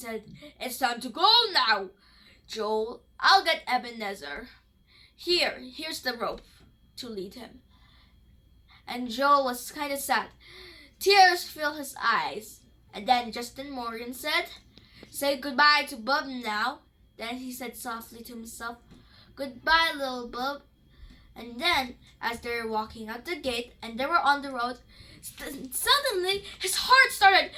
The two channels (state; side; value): identical; both; correlation 1.00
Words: "It's time to go now. Joel, I'll get Ebenezer. Here's the rope to lead him." And Joel was kind of sad. Tears filled his eyes. And then Justin Morgan said, "Say goodbye to Bub now." Then he said softly to himself, "Goodbye, Little Bub." And then, as they were walking out the gate and they were on the road, suddenly his heart started